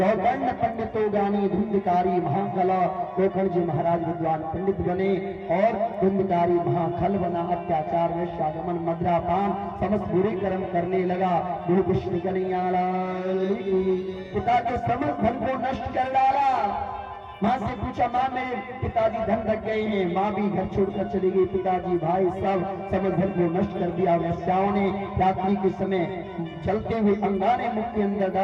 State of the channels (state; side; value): identical; both; correlation 1.00